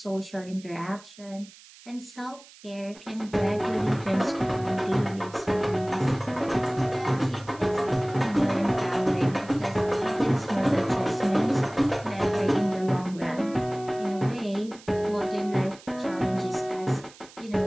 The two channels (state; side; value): noise; right; hiss, 22 dB below the sound